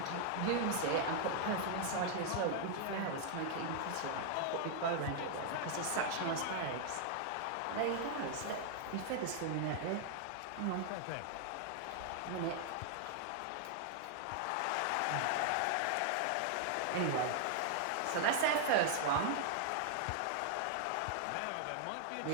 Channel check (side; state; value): both; different; correlation -0.01